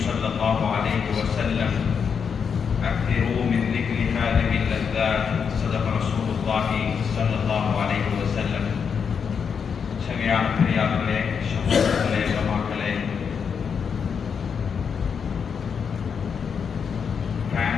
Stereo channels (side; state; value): right; quieter; 6.6 dB